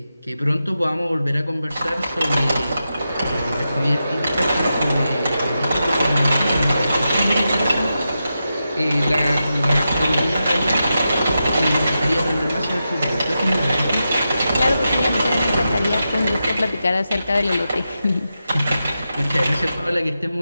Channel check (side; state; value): both; inverted; correlation -0.89